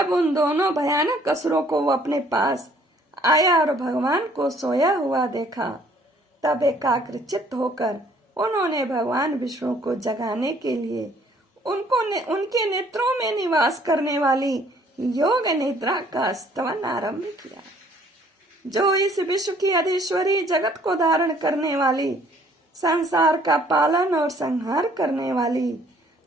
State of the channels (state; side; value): normal; both; correlation 0.60